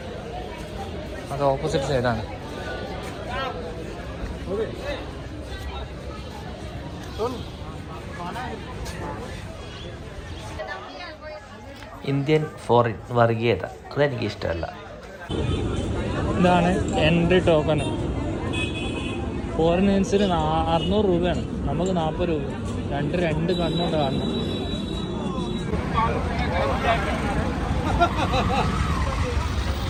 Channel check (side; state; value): both; identical; correlation 1.00